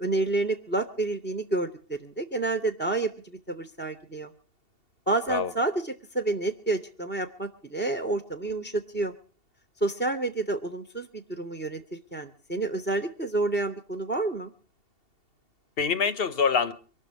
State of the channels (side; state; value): right; late; 2.7 ms